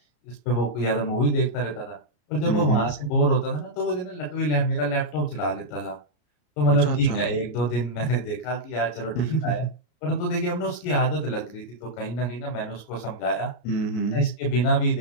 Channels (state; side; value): late; right; 33 ms